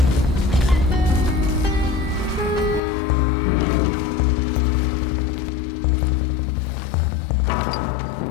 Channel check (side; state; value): right; drops out; at 2.8 s